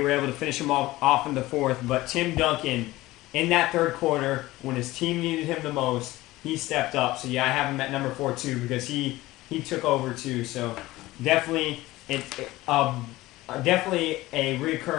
able to finish him off in the fourth. But Tim Duncan, in that third quarter, when his team needed him the most, he stepped up. So yeah, I have him at number 4 too, because he took over too. So definitely definitely a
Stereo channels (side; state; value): right; quieter; 18.1 dB